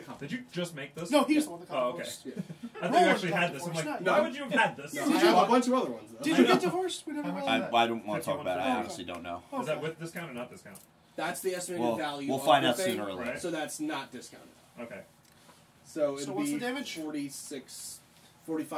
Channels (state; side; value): identical; both; correlation 1.00